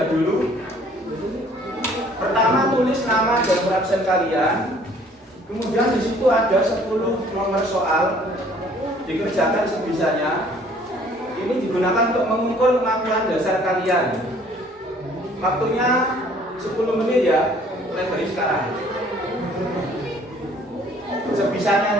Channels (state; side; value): normal; both; correlation 0.57